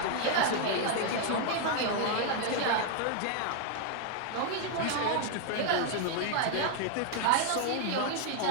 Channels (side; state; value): both; different; correlation 0.00